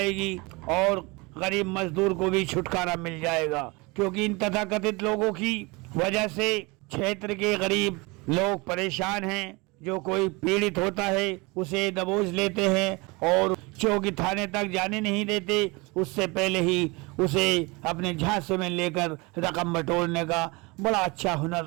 और गरीब मजदूर को भी छुटकारा मिल जाएगा, क्योंकि इन तथाकथित लोगों की वजह से क्षेत्र के गरीब लोग परेशान हैं। जो कोई पीड़ित होता है उसे दबोच लेते हैं और चौकी थाने तक जाने नहीं देते, उससे पहले ही उसे अपने झांसे में लेकर रकम बटोरने का बड़ा अच्छा हुनर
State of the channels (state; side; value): quieter; left; 25.9 dB